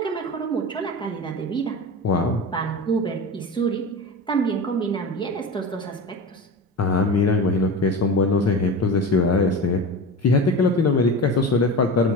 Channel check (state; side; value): normal; both; correlation 0.28